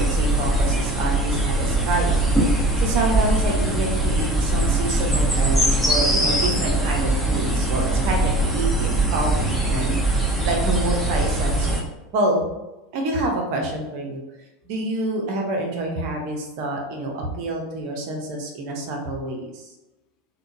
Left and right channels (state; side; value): normal; both; correlation 0.41